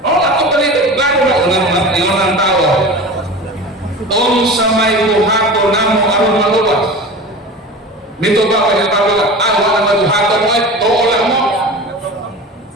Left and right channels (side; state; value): both; normal; correlation 0.33